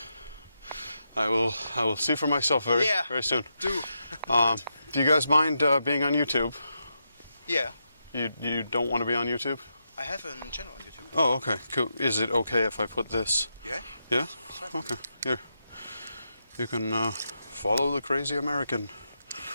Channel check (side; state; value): both; inverted; correlation -0.84